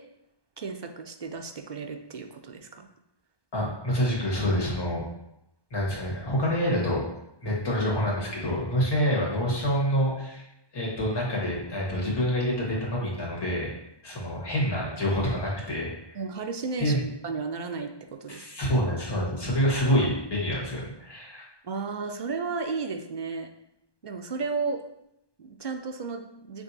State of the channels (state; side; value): late; right; 1.2 ms